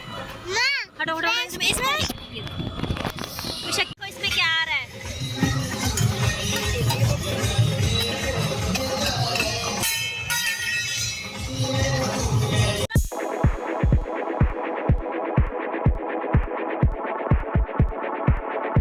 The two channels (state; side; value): identical; both; correlation 1.00